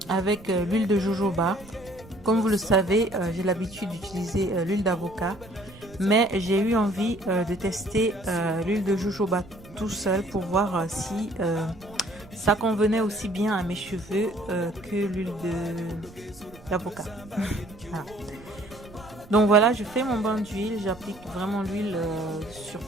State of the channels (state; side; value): noise; right; rumble, 21 dB below the sound